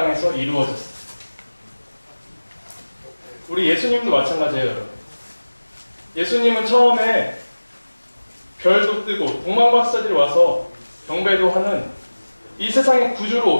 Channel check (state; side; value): inverted; both; correlation -1.00